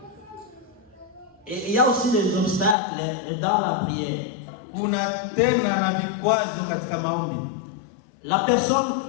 Et il y a aussi des obstacles dans la prière. La personne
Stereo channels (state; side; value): drops out; right; at 2.8 s